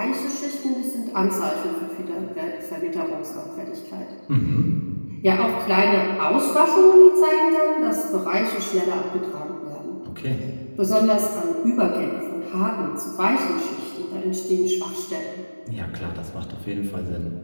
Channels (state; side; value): inverted; both; correlation -1.00